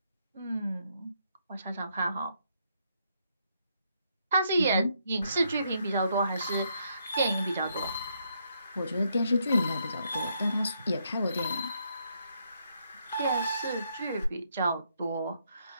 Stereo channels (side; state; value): both; inverted; correlation -0.75